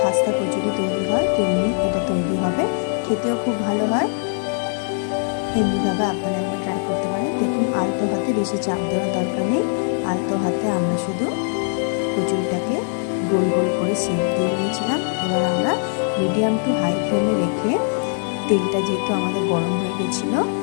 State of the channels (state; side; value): silent; right; 65 dB below the other